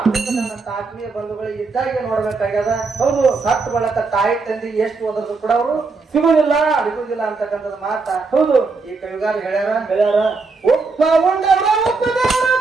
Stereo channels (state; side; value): quieter; left; 4.1 dB